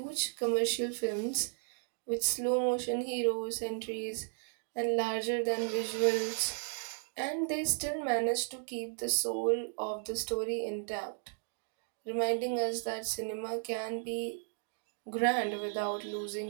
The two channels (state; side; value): silent; left; 55 dB below the other